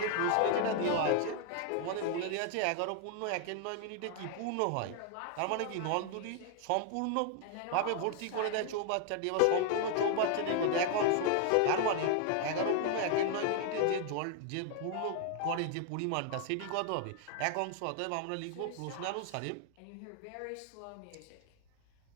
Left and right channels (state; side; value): different; both; correlation 0.00